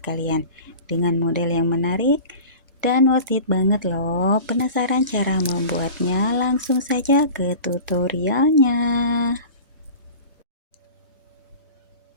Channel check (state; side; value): inverted; both; correlation -0.37